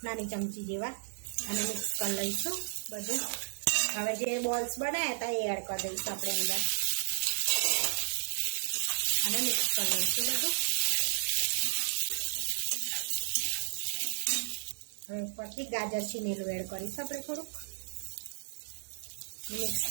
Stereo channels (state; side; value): silent; left; digital silence